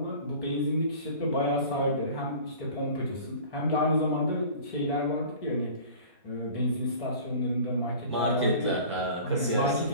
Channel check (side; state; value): both; inverted; correlation -0.43